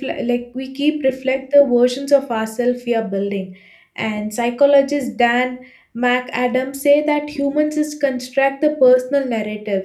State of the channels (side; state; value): both; identical; correlation 1.00